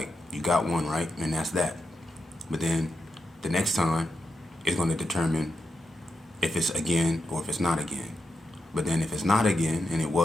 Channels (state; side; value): normal; both; correlation 0.86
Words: you got one right, and that's that. But then the next time is going to determine if it's again or if it's not again. But then if it's not again, and it